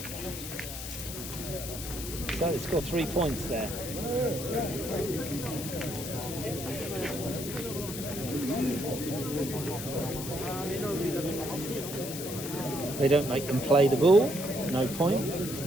So they score 3 points there. They don't make them play the ball, no point. It's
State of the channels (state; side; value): noise; left; hiss, 8 dB below the sound